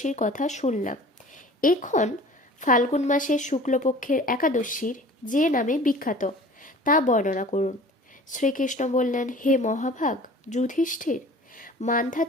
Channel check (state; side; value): normal; both; correlation 0.45